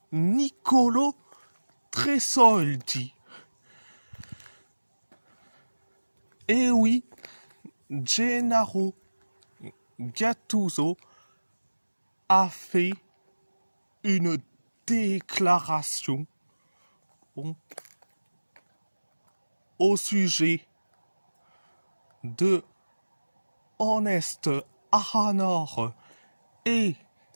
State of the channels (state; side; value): inverted; both; correlation -1.00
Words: Nicolo Tresoldi. Et oui, Gennaro Gattuso a fait une déclaration au sujet de Honest Ahanor et